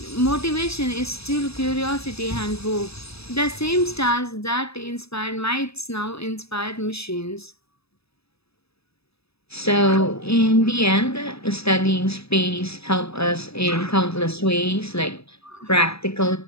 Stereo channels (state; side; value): late; right; 0.78 ms